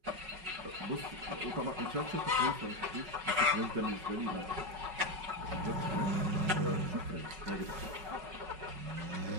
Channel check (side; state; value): left; late; 5.3 ms